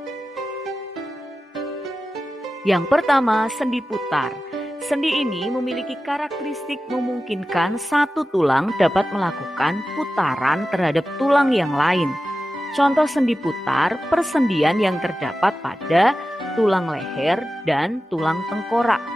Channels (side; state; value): both; normal; correlation 0.94